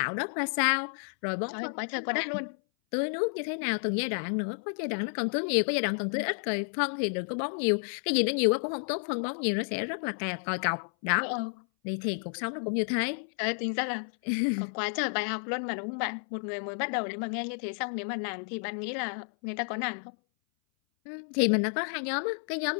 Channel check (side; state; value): right; silent; 57 dB below the other